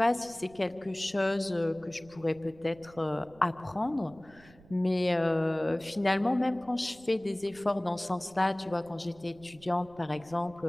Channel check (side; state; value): right; noise; rumble, 24 dB below the sound